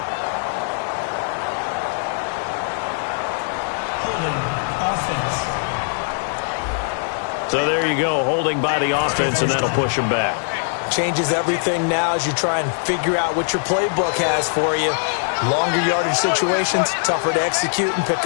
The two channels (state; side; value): silent; right; digital silence